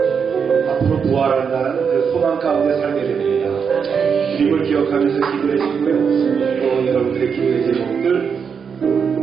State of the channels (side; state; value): left; quieter; 6.5 dB